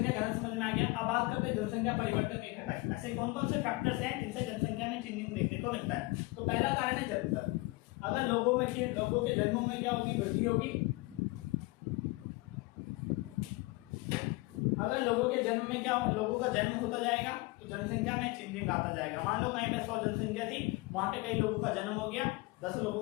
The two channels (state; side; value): quieter; right; 23.2 dB